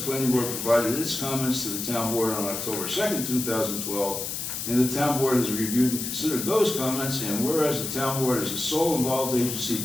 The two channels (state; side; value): noise; left; hiss, 4 dB below the sound